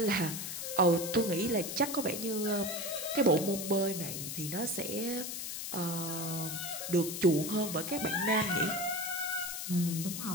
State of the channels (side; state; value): left; noise; hiss, 5 dB below the sound